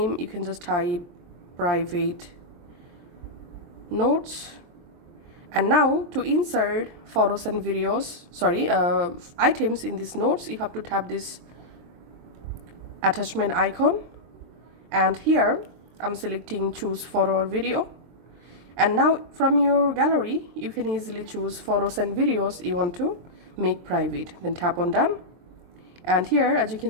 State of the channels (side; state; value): left; late; 23 ms